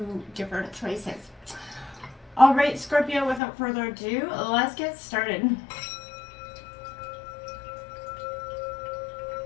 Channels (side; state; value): right; drops out; at 3.4 s